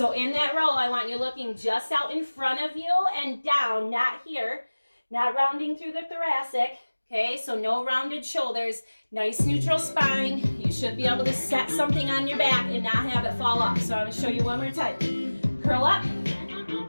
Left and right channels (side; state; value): both; inverted; correlation -1.00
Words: in that row, I want you looking just out in front of you and down, not here, not rounding through the thoracic. Okay, so no rounded shoulders, nice neutral spine. You should be able to set something on your back and not have it fall off. So I'm gonna show you one more time. Curl up,